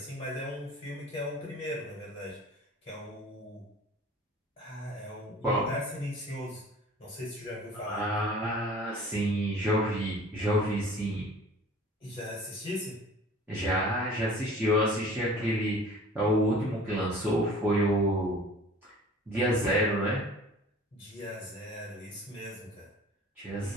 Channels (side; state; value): both; normal; correlation 0.46